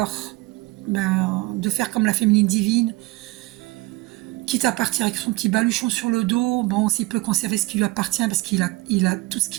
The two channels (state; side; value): quieter; left; 20.7 dB